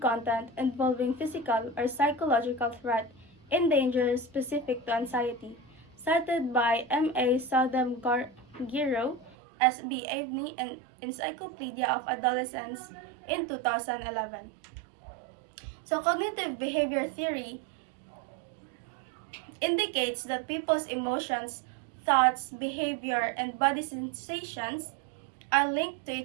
involving physical or psychological threat and danger specific to anxiety, cited by M.A. Southam Giro, S.B. Avni, and Encyclopedia of Adolescence in 2011. So cognitive behavior theory indicates that people's emotions, thoughts, behavior, and body sensations are linked to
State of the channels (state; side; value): drops out; left; at 9.3 s